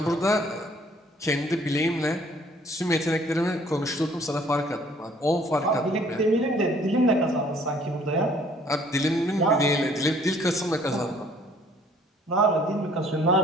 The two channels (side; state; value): both; normal; correlation 0.58